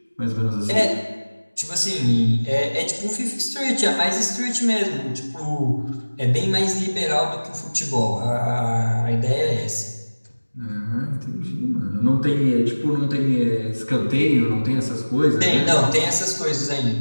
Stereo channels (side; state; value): both; inverted; correlation -1.00